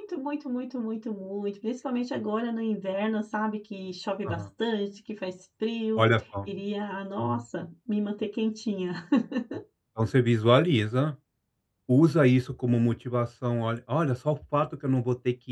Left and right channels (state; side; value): identical; both; correlation 1.00